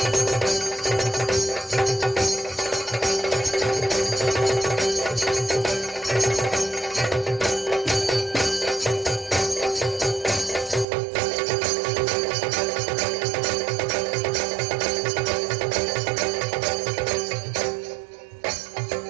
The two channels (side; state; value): left; drops out; at 10.9 s